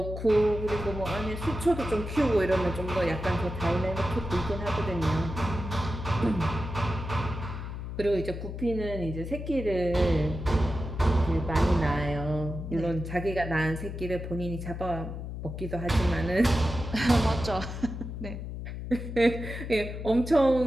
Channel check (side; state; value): left; noise; hum, 7 dB below the sound